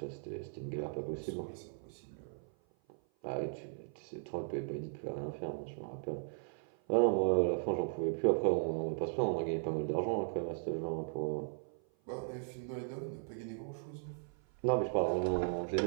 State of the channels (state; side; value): silent; left; 53 dB below the other